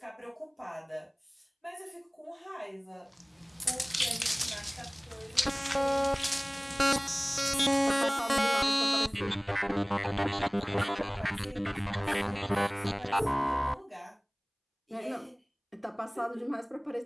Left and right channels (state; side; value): identical; both; correlation 1.00